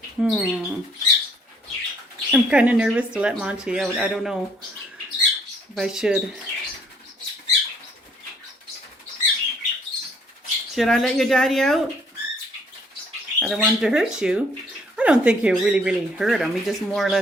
I'm kind of nervous to let Monty out. I don't know if I should. Should I let your daddy out? I don't want him to hurt you. I don't think he'll really hurt him. He just more or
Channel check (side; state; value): both; normal; correlation 0.63